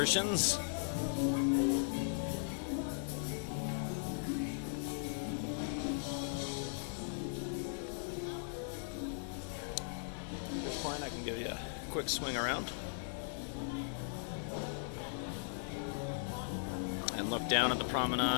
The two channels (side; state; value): right; silent; digital silence